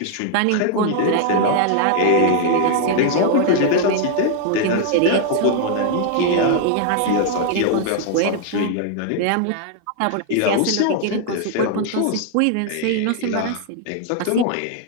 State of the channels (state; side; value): different; both; correlation 0.00